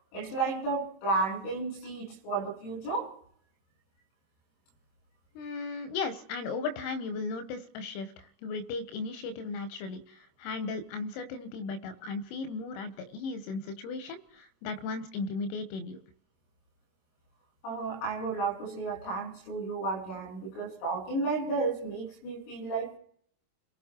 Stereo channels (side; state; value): right; late; 26 ms